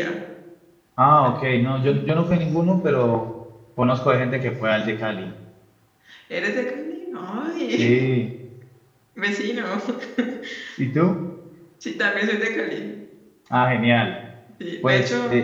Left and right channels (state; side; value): identical; both; correlation 1.00